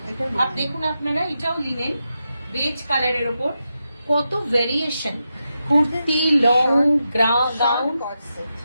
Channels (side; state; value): both; inverted; correlation -0.87